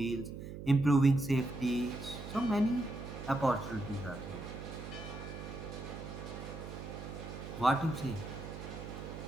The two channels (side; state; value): right; noise; hum, 9 dB below the sound